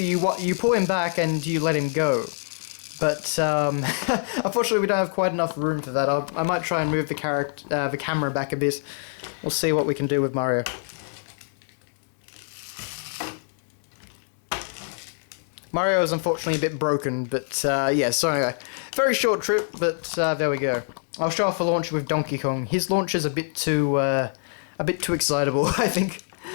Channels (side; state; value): right; silent; digital silence